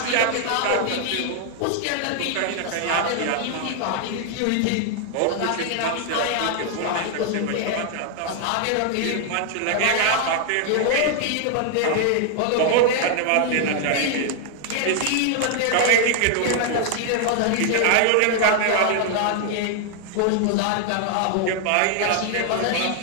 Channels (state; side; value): different; both; correlation 0.00